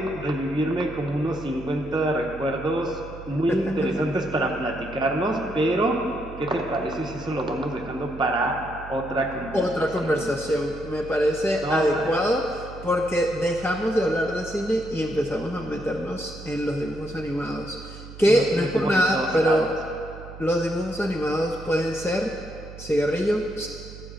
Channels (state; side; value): noise; right; hum, 14 dB below the sound